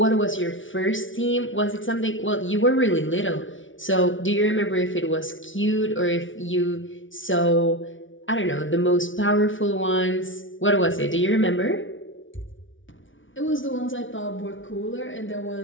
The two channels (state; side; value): late; right; 0.56 ms